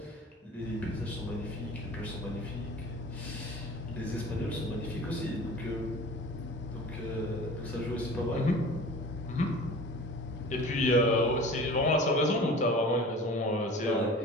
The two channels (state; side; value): normal; both; correlation 0.41